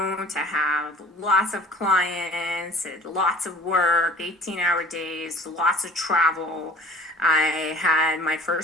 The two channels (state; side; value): normal; both; correlation 0.47